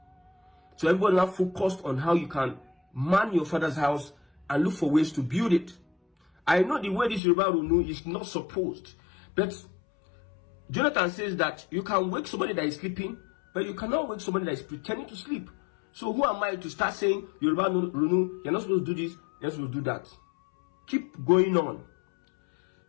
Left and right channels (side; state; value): right; drops out; at 7.2 s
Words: So everybody now focused on how you can man your father's house and look for ways to build it. I know the way this Yoruba Runu is not supposed, but Jonathan says that you can wake somebody that is sleeping, but you cannot wake somebody that is pretending to sleep. So who am I to start saying, Yoruba Runu, you're not supposed to do this, you're not supposed to do that? Keep going on.